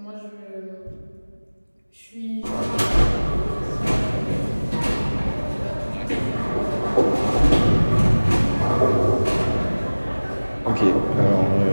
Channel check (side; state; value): both; inverted; correlation -1.00